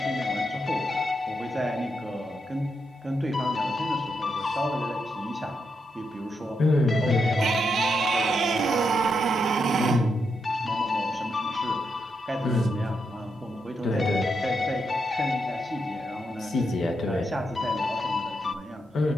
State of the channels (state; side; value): normal; both; correlation 0.83